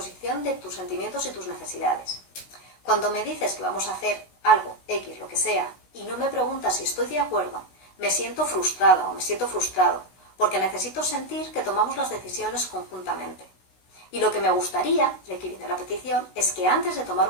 de tus sentimientos y tus necesidades. Cuando me dices que vamos a hacer algo, X, lo que sea, y no me preguntas si estoy de acuerdo, me siento frustrada o me siento frustrado, porque necesito sentir que tomamos las decisiones conjuntamente. Y lo que me gustaría, y aquí viene la petición, es que antes de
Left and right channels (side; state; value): right; late; 16 ms